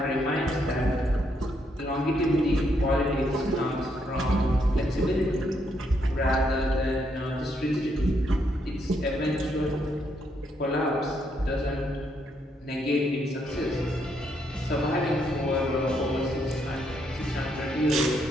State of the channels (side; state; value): both; normal; correlation 0.75